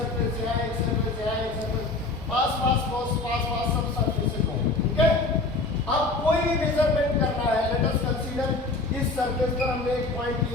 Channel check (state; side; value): quieter; right; 3.3 dB